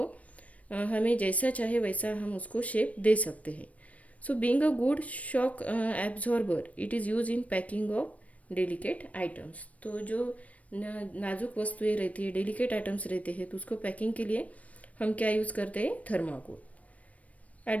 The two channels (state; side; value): late; right; 0.067 ms